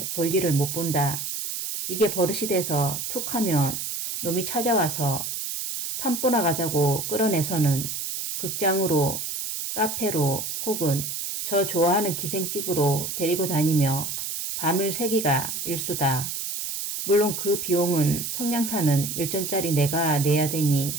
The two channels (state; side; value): noise; right; hiss, 4 dB below the sound